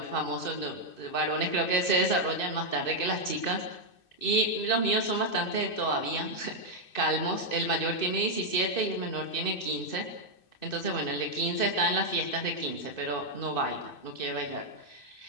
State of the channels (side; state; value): right; late; 2.6 ms